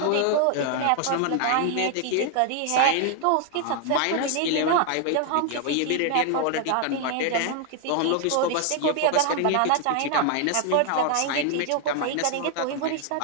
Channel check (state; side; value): different; both; correlation 0.00